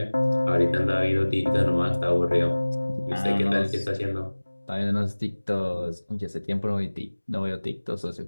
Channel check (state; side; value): inverted; both; correlation -1.00